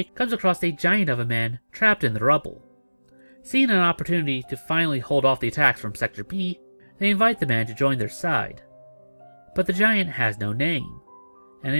comes across a giant of a man trapped in the rubble. Seeing an opportunity to finally hold off the attacks from Sector B, they invite the man to join their side. But the giant has no name, and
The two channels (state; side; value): inverted; both; correlation -1.00